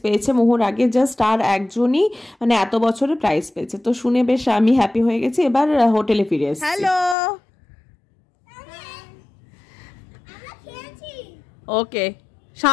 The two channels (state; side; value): drops out; right; at 7.2 s